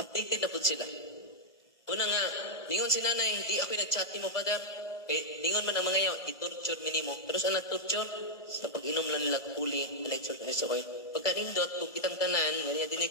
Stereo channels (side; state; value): right; late; 1.6 ms